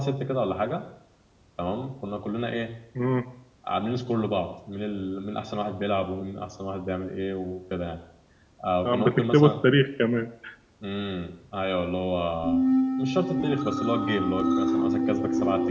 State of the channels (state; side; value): identical; both; correlation 1.00